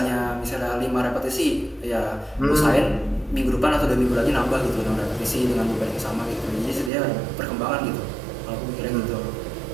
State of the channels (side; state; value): left; drops out; at 6.9 s